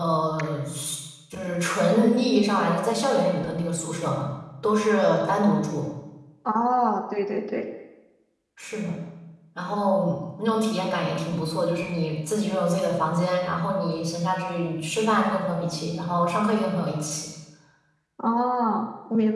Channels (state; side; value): identical; both; correlation 1.00